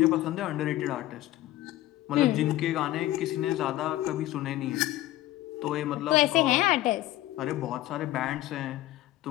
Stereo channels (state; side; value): quieter; right; 15.6 dB